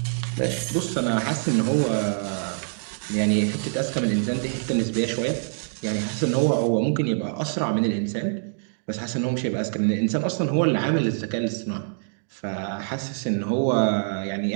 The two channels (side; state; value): left; silent; digital silence